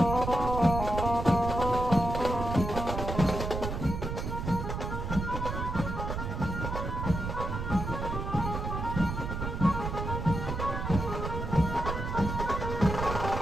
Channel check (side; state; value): right; noise; rumble, 4 dB below the sound